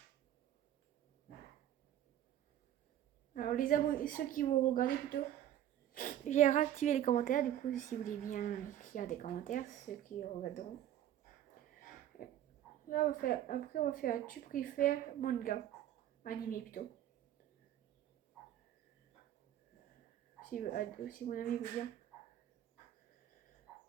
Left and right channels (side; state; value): left; quieter; 11.6 dB